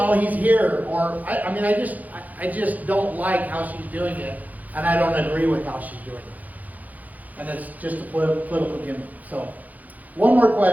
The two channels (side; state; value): left; late; 0.079 ms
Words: he's here? Or I just don't like how she's doing it, and I don't agree with how she's doing it. And it's just a political gimmick. So, one more